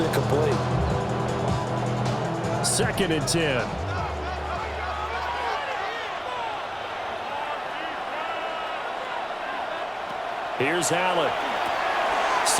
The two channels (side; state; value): both; identical; correlation 1.00